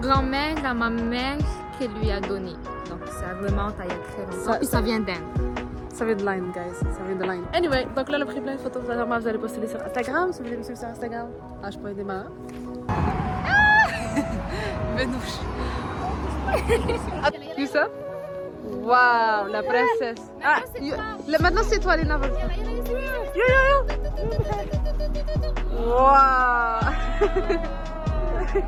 à ma mère qui lui a donné. Donc ça remonte à il y a très longtemps. Puis ça vient d'Inde. Ça vient de Line, guys. Ça vient de Line. Anyway, donc là, on a pris plein de photos. Vraiment, vous allez poster sur Instagram. Si vous voulez me suivre sur Instagram, h.démarre. Benouche. You ça? Waouh, la princesse. Ah, maintenant c'est toi, Lina. Yo. Waouh.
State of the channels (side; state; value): both; identical; correlation 1.00